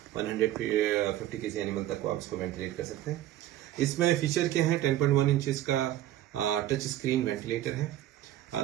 150 kg animal तक को आप इसको वेंटिलेट कर सकते हैं। इसमें फीचर क्या है? 10.1 इंचेस का टच स्क्रीन वेंटिलेटर है।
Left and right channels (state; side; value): quieter; left; 13.3 dB